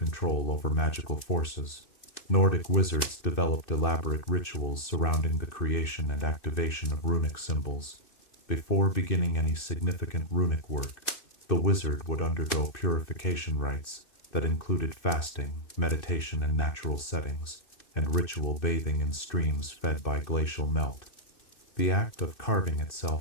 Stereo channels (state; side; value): late; right; 2.6 ms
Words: over magical forces, Nordic wizards developed elaborate rituals surrounding the creation and activation of runic symbols. Before beginning any significant runic work, the wizard would undergo purification rites that included fasting, meditation in natural settings, and ritual bathing in streams fed by glacial melt. The act of carving